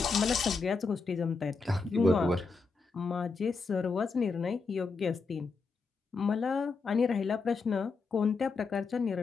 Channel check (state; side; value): quieter; right; 4.5 dB